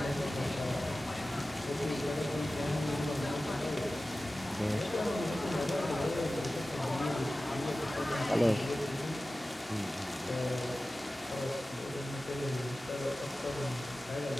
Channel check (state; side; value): normal; both; correlation 0.96